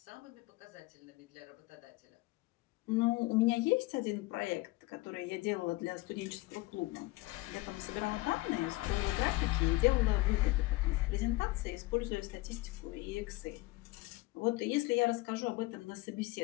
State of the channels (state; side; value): quieter; right; 21.2 dB